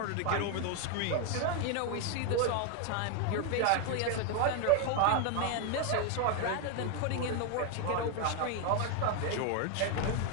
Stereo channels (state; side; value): different; both; correlation 0.01